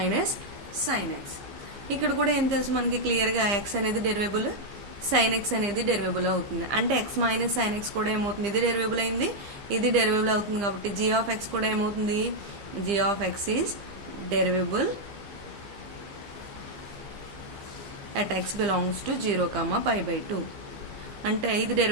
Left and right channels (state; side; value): late; left; 15 ms